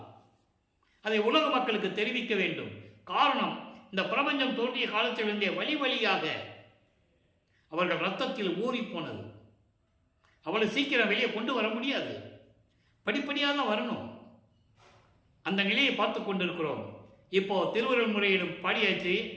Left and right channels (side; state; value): both; identical; correlation 1.00